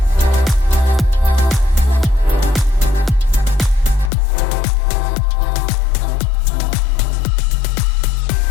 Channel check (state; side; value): drops out; right; at 4.1 s